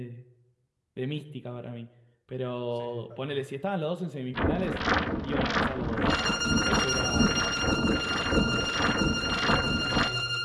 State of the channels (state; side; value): identical; both; correlation 1.00